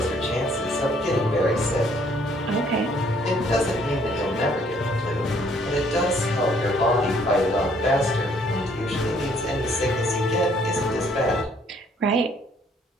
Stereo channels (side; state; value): both; normal; correlation 0.64